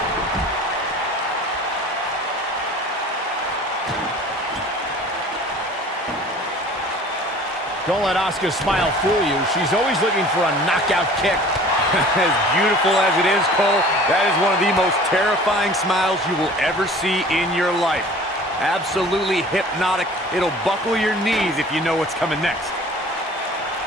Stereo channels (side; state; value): both; normal; correlation 0.46